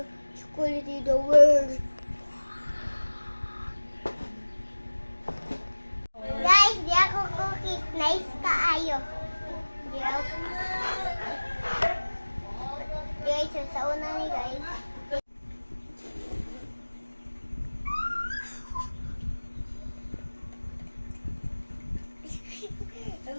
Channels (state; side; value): inverted; both; correlation -1.00